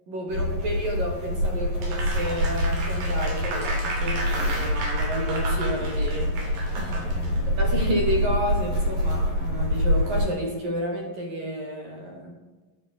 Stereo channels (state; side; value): late; left; 11 ms